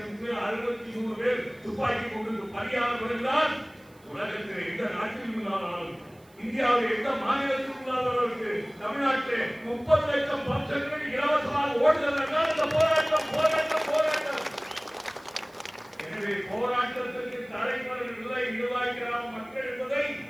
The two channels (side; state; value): right; noise; hiss, 30 dB below the sound